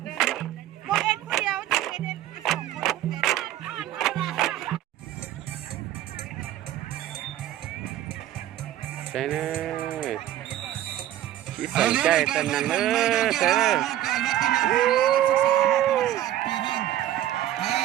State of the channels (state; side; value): quieter; left; 13.0 dB